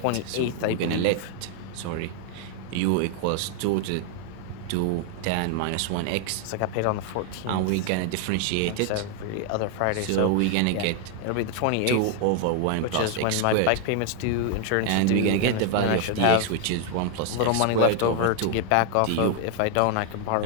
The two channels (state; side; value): different; both; correlation 0.00